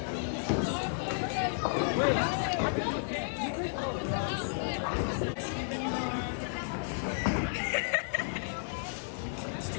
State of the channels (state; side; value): silent; right; digital silence